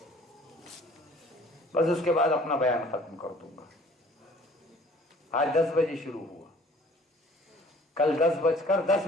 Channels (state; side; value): normal; both; correlation 0.52